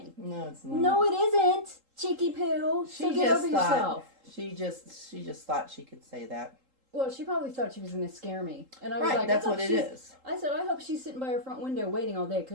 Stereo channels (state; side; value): late; left; 3.8 ms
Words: No, it's not. No, it isn't, cheeky poo. So get over yourself. She just thought she could say that. Well, she probably thought she was going to scare me. And I was like, that's what it is. I said, I hope she's sitting by her front window waiting all day